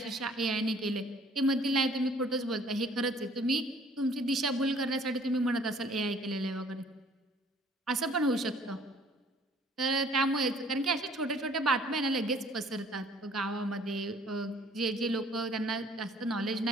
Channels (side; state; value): both; normal; correlation 0.57